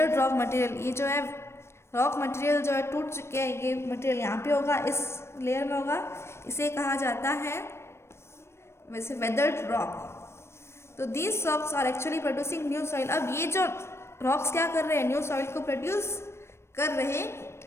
रॉक मटेरियल। ये जो है रॉक मटेरियल जो है टूट चुके हैं, ये मटेरियल यहाँ पे होगा, इस लेयर में होगा, इसे कहा जाता है वैसे वेदर्ड रॉक। तो these rocks are actually producing new soil. अब ये जो रॉक्स क्या कर रहे हैं, न्यू सॉइल को प्रोड्यूस कर रहे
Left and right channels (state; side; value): late; right; 0.13 ms